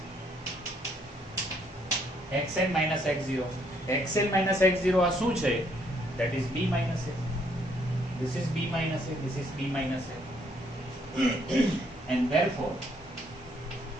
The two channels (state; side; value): normal; both; correlation 0.69